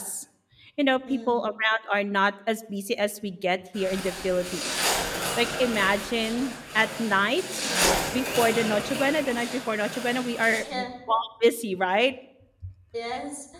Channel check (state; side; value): identical; both; correlation 1.00